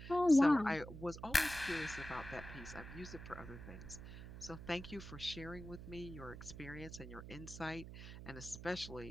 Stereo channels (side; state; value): right; noise; hum, 11 dB below the sound